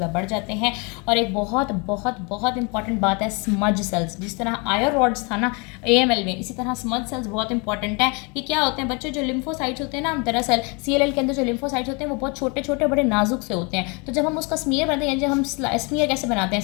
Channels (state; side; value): quieter; right; 31.1 dB